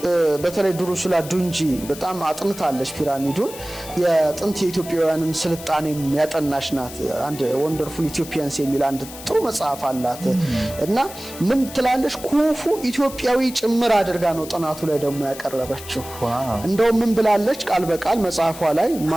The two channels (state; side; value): noise; left; hiss, 14 dB below the sound